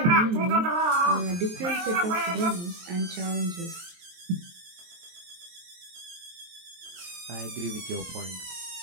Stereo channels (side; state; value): left; late; 23 ms